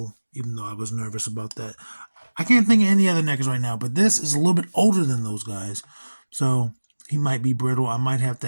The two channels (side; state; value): both; inverted; correlation -1.00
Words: even though I was nervous about that. I can't think of any other NECAs right now, but this is a little bit older than those guys, so he might be brittle. I might have to